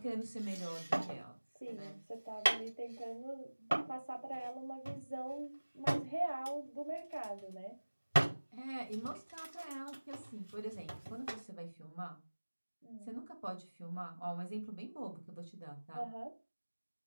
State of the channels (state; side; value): inverted; both; correlation -1.00